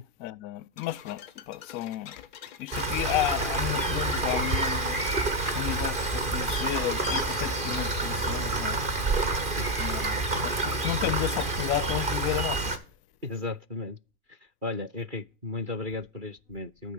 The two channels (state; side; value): late; left; 2.4 ms